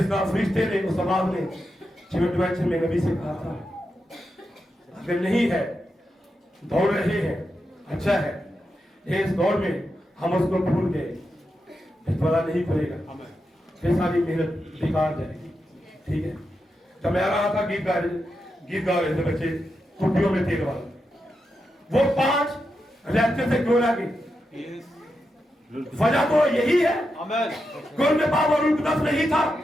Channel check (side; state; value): both; normal; correlation 0.87